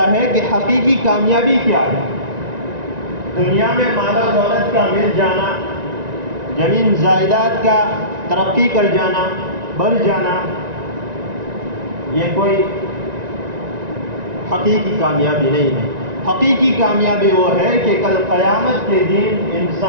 ہے کہ حقیقی کامیابی کیا ہے۔ دنیا میں مال و دولت کا مل جانا، زمین جائیداد کا ترقی کر جانا، بڑھ جانا، یہ کوئی حقیقی کامیابی نہیں ہے۔ حقیقی کامیابی وہ ہے کہ کل قیامت کے دن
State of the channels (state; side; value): late; left; 1.9 ms